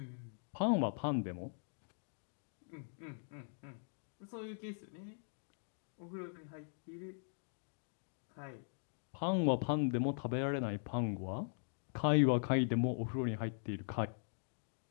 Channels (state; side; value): silent; right; digital silence